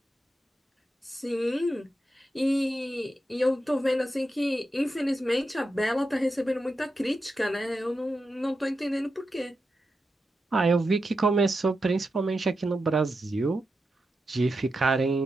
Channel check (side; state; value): both; normal; correlation 0.88